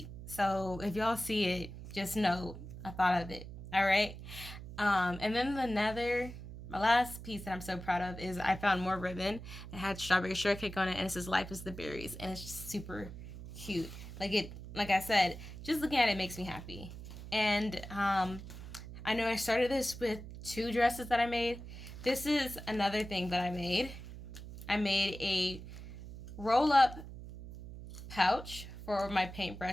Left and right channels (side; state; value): right; noise; hum, 12 dB below the sound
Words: So if y'all see it, just know I thought of it. All right. And then my last piece that I'm so proud of is I found more ribbon. It had strawberry shortcake on it, and it says "Life is the berries," and it's just super cute. Like I said, just looking at it makes me happy. And I know I started this with 2 dresses that I made. This is another thing that I made. I made a roll-up pouch for my